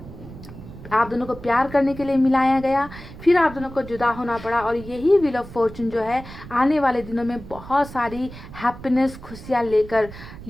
को प्यार करने के लिए मिलाया गया, फिर आप दोनों को जुदा होना पड़ा। और यही व्हील ऑफ फॉर्चून जो है आने वाले दिनों में बहुत सारी हैप्पीनेस, खुशियाँ लेकर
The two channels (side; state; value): right; noise; rumble, 15 dB below the sound